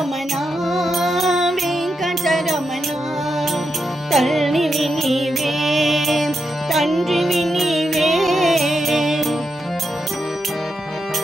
వెంకటరమణ తల్లివి నీవే తండ్రివి నీవే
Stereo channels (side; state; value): both; normal; correlation 0.85